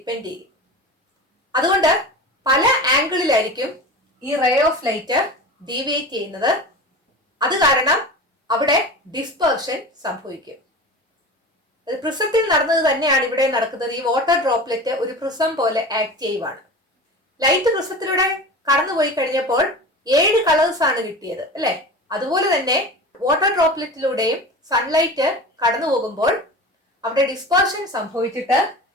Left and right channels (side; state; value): both; normal; correlation 0.32